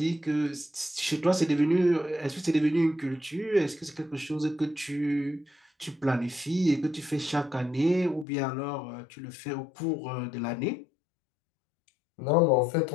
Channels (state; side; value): drops out; right; at 8.2 s